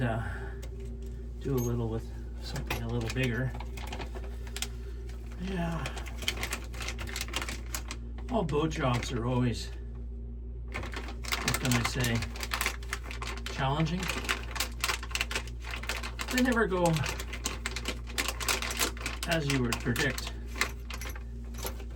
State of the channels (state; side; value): identical; both; correlation 1.00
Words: do a little with something a little bigger. Yeah. All boat jobs are always, what can I say, challenging. They never go as you would predict.